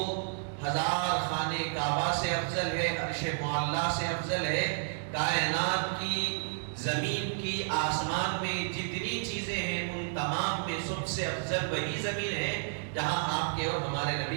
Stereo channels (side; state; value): left; silent; digital silence